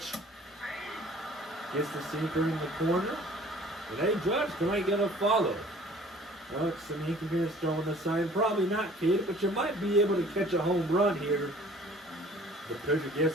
Gets the sinker in the corner. And hey, Judge, can I get a follow? Well, some Yankee fans throwing the sign. Probably not, kid, but you might be able to catch a home run here. The pitcher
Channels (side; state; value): both; normal; correlation 0.51